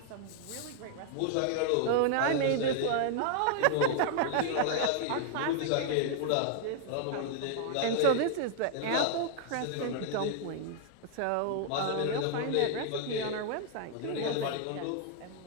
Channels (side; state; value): both; different; correlation 0.00